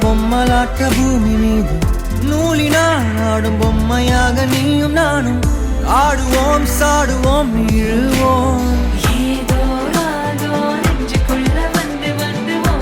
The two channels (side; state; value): both; identical; correlation 1.00